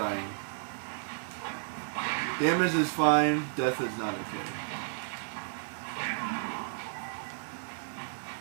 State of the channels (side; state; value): left; silent; digital silence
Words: Damage is fine, death is not okay.